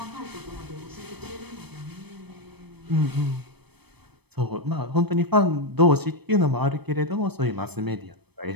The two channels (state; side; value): late; left; 0.98 ms